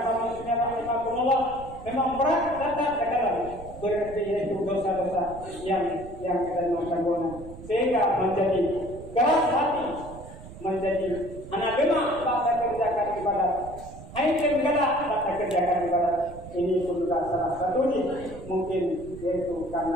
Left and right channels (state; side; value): noise; right; rumble, 15 dB below the sound